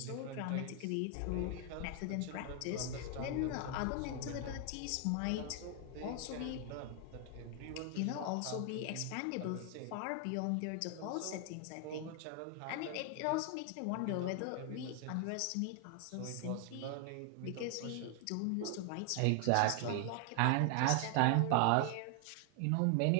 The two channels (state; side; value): different; both; correlation 0.00